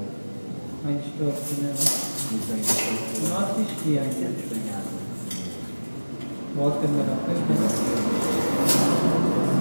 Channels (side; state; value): both; inverted; correlation -1.00